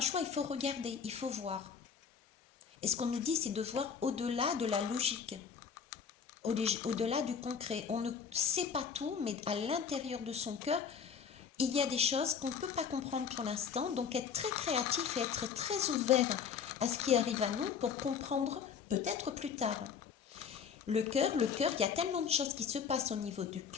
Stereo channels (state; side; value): quieter; right; 6.8 dB